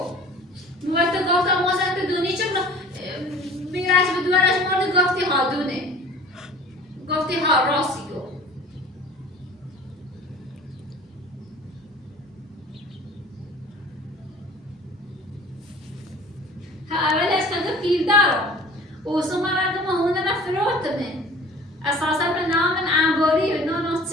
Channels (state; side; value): normal; both; correlation 0.45